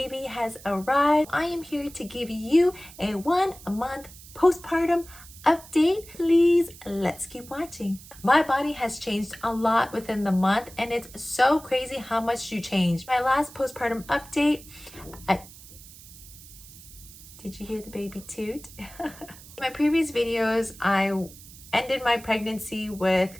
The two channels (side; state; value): right; noise; hiss, 19 dB below the sound